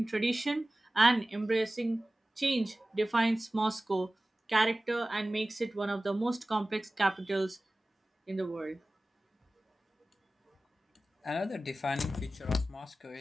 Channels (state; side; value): normal; both; correlation 0.97